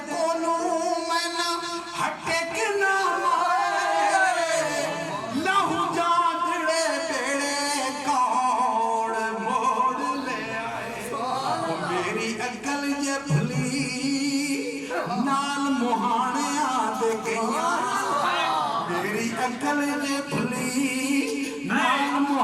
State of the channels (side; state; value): both; identical; correlation 1.00